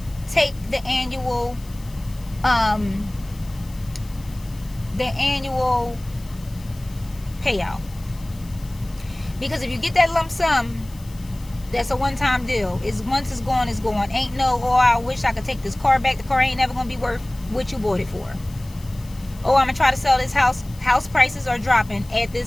take the annual payout. Because if you get that lump sum, that's a one-time deal. Once it's gone, it's gone. Ain't no, oh, I wish I could take this car back. The car ain't never gonna be worth what you bought it for. Oh, I'm gonna try to sell this house. House prices are dropping at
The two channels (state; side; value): noise; left; hiss, 23 dB below the sound